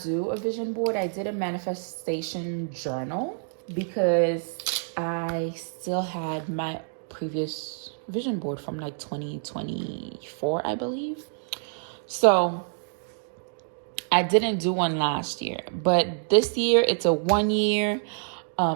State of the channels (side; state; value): left; silent; digital silence